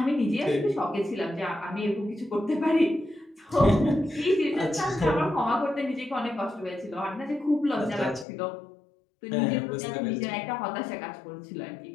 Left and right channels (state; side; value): drops out; right; at 8.2 s